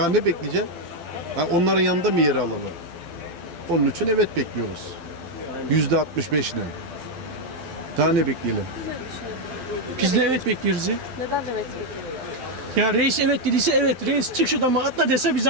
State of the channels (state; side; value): late; left; 12 ms